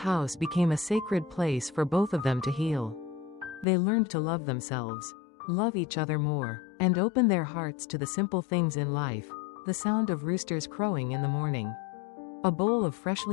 became a sacred place for both of them to heal. They learned to love themselves, love each other more, and open their hearts to the simple things in life, the sound of roosters crowing in the morning, a bowl of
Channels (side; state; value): right; drops out; at 3.7 s